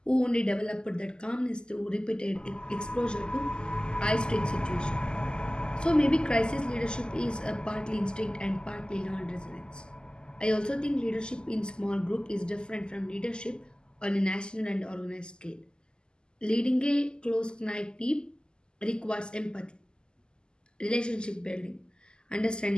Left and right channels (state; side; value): late; right; 0.047 ms